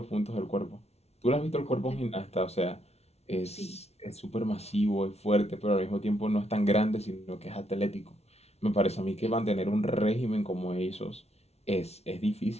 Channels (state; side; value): late; right; 0.31 ms